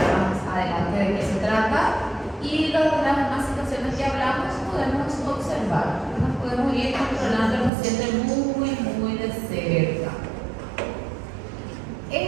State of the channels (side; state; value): left; drops out; at 7.7 s